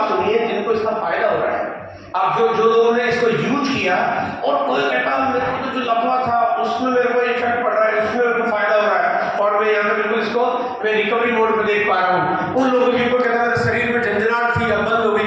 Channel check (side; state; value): both; identical; correlation 1.00